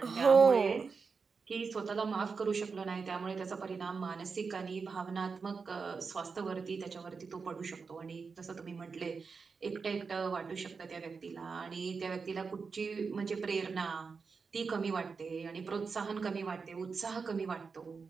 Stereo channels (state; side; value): quieter; left; 5.1 dB